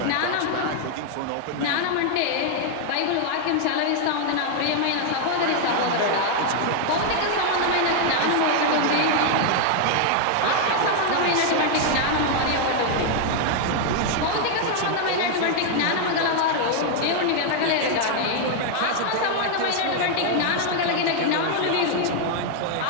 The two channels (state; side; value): different; both; correlation 0.00